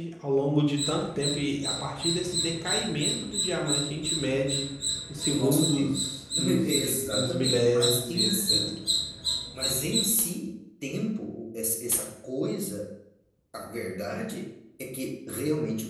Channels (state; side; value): identical; both; correlation 1.00